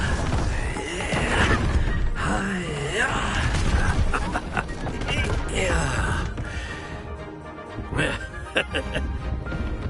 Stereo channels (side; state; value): both; identical; correlation 1.00